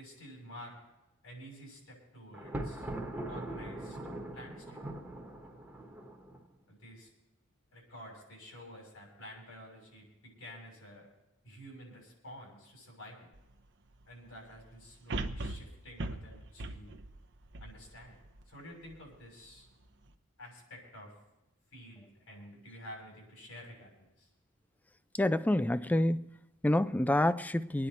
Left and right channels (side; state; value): both; normal; correlation 0.87